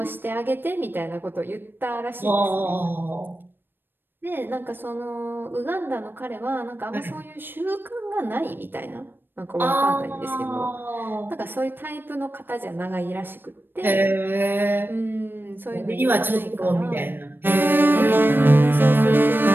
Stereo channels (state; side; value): late; left; 0.096 ms